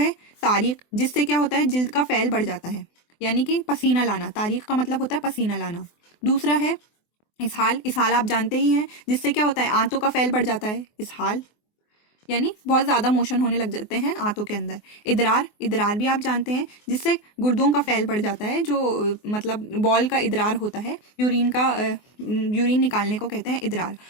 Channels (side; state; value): right; late; 24 ms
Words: तारीख, जिससे क्या होता है, जिल्द का फैल बढ़ जाता है, यानी कि पसीना लाना। तारीख का मतलब होता है पसीना लाना। दूसरा है इसहाल आप जानते ही हैं, जिससे क्या होता है, आंतों का फैल बढ़ जाता है। इसहाल यानी बहुत ज़्यादा मोशन होने लग जाते हैं आंतों के अंदर। इदरार भी आप जानते हैं, जिससे गुर्दों का फैल बढ़ जाता है, जो मतलब बॉल का इदरार होता है, यूरिन निकालने को कहते हैं इदरार।